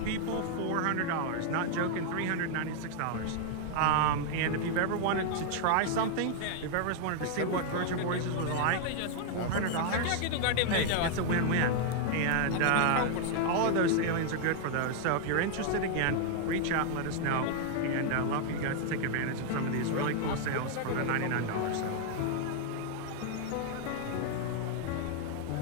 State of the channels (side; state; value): both; different; correlation 0.00